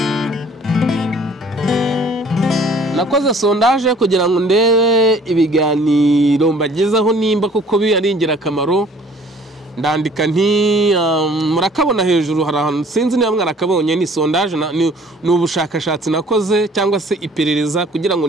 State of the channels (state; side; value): normal; both; correlation 0.54